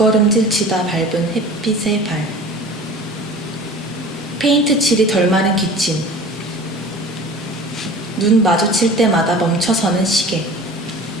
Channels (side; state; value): both; normal; correlation 0.41